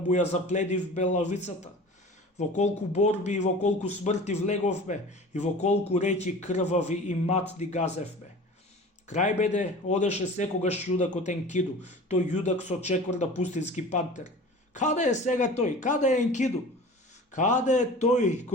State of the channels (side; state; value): both; normal; correlation 0.39